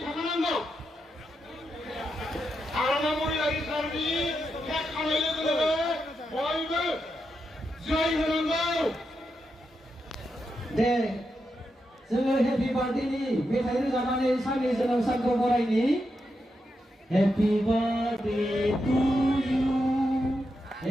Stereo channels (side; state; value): both; normal; correlation 0.85